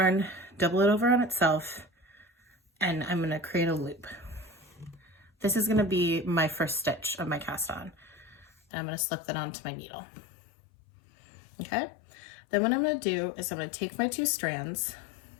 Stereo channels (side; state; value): right; drops out; at 8.5 s